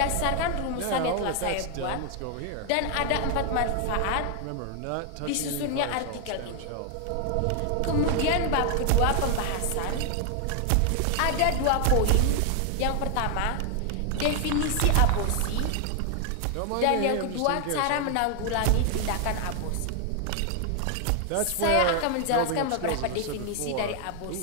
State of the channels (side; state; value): both; different; correlation 0.00